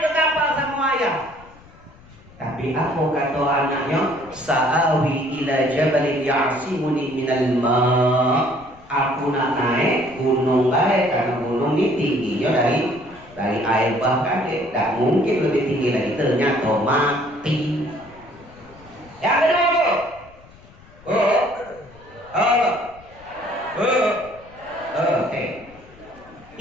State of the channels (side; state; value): left; noise; rumble, 24 dB below the sound